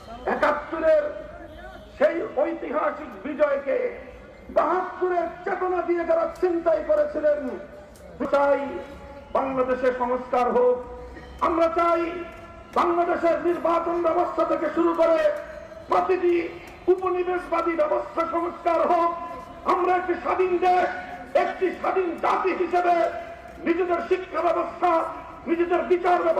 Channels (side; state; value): both; identical; correlation 1.00